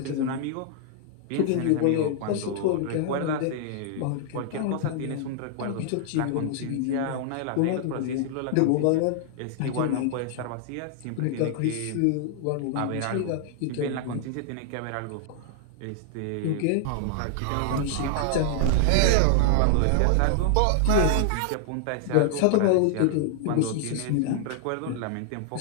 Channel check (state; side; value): different; both; correlation 0.00